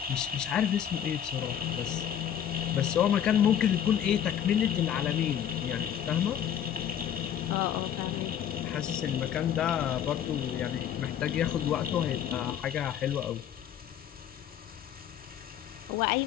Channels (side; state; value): right; quieter; 9.6 dB